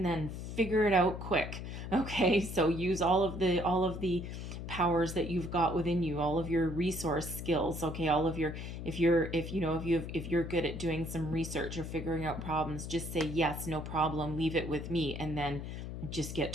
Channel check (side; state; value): left; noise; hum, 7 dB below the sound